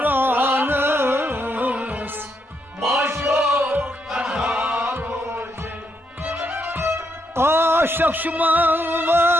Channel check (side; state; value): both; normal; correlation 0.78